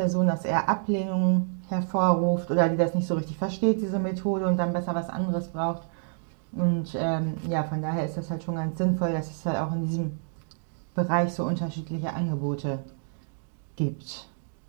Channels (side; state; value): left; silent; digital silence